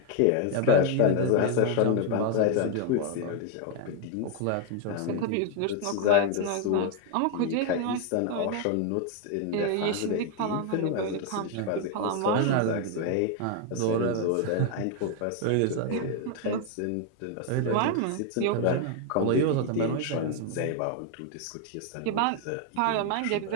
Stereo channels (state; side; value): different; both; correlation 0.01